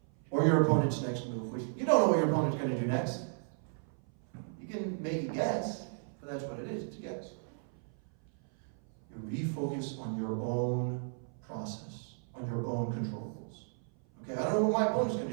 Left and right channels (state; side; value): silent; left; 55 dB below the other